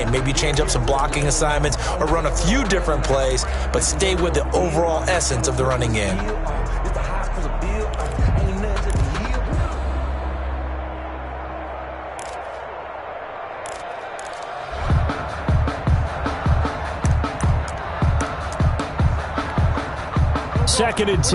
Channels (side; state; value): both; identical; correlation 1.00